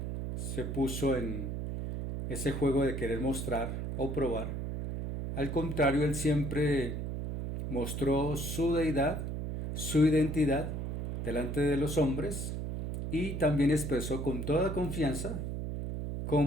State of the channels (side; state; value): right; noise; hum, 4 dB below the sound